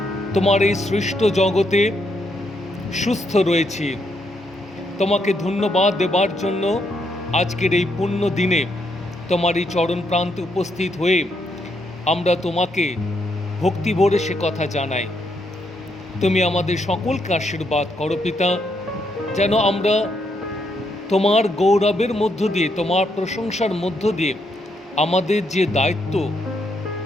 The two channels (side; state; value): both; normal; correlation 0.77